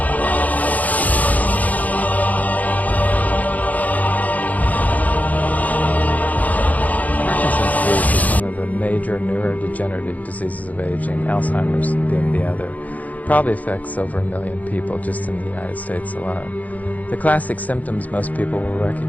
Major neurodegenerative diseases of aging, Alzheimer's being the other, probably affects over 1 million people just in the United States alone. The classic symptoms most people will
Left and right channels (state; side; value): late; right; 0.077 ms